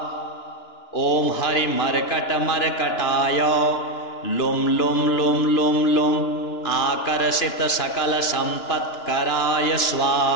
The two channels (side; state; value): right; late; 2.9 ms